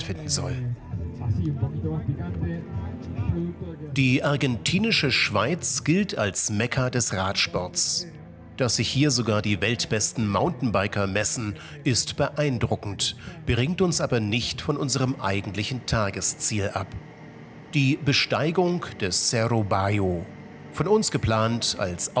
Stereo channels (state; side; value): identical; both; correlation 1.00